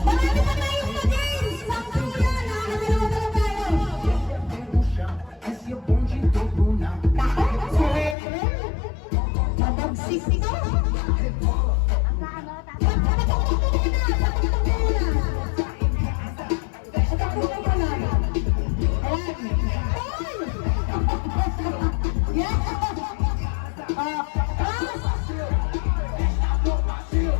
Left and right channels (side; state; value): right; drops out; at 8.2 s